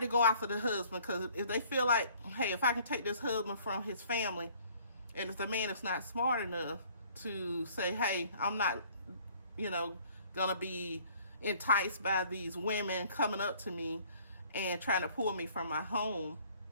go after the husband because if they feel like, hey, if I can take this husband from his family, and if the man is not smart enough to say, hey, I'm not, gonna be enticed by these women coming up to me and trying to pull me from my home,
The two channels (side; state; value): both; inverted; correlation -0.57